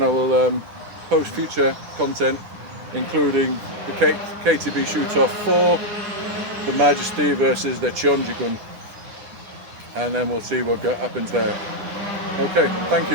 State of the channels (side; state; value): left; late; 10 ms